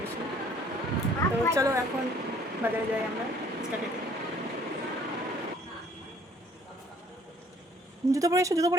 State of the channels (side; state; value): both; normal; correlation 0.58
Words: তো চলো এখন বাজারে যাই আমরা ফুচকা খেতে। জুতো পরে এসো, জুতো